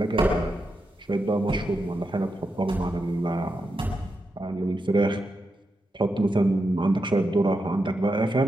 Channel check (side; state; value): both; normal; correlation 0.86